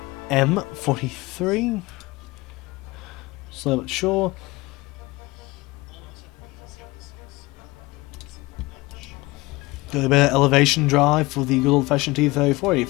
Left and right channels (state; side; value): quieter; right; 21.6 dB